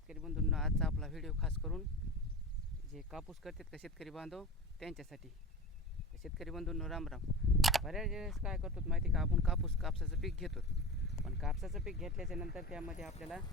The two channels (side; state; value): both; normal; correlation 0.31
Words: बंधूंनो, आजचा आपला व्हिडिओ खास करून जे कापूस करतात का शेतकरी बांधव त्यांच्यासाठी. शेतकरी बंधूंनो राम राम. बऱ्याच वेळेस काय करतो माहिती का, आपण कापसाचं पीक घेतो, पण कापसाचं पीक घेतल्याच्या नंतर त्यामध्ये आपल्याला